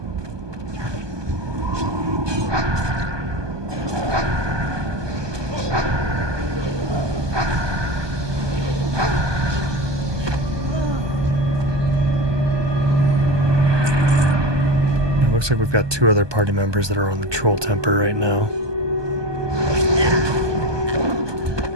Looks like we've got 2 other party members that are on the Troll Temper right now.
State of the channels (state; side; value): late; left; 1.2 ms